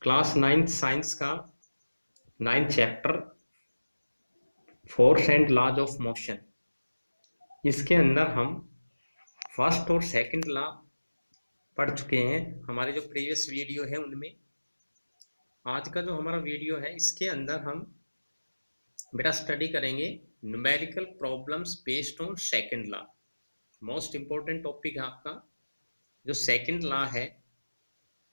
क्लास 9 साइंस का 9 chapter force and laws of motion. इसके अंदर हम फर्स्ट और सेकंड लॉ पढ़ चुके हैं। हमारे जो प्रीवियस वीडियो है उनमें आज का जो हमारा वीडियो है इसके अंदर हम बेटा स्टडी करेंगे numerical problems based on second law. Most important topic है आपका जो सेकंड लॉ है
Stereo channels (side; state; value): both; inverted; correlation -1.00